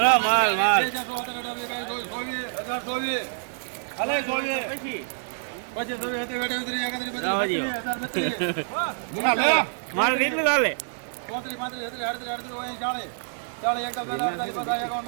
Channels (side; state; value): left; silent; 61 dB below the other